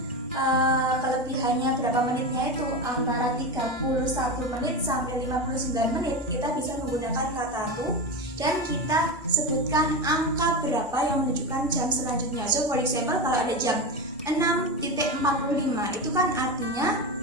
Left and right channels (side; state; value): both; normal; correlation 0.19